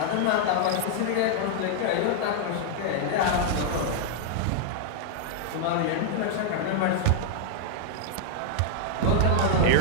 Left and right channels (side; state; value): both; different; correlation -0.01